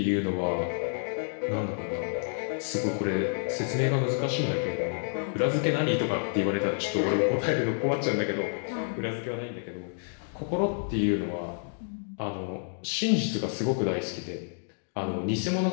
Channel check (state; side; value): silent; right; 58 dB below the other